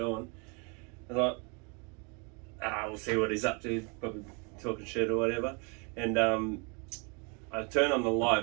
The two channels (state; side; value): quieter; left; 33.2 dB